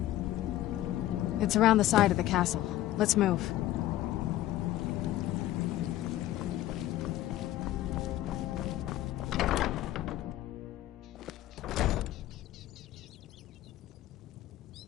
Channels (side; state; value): right; quieter; 14.4 dB